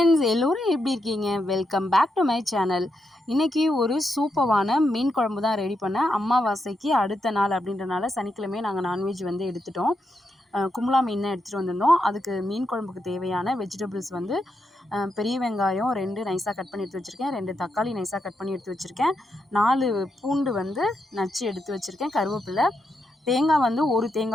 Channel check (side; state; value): both; normal; correlation 0.83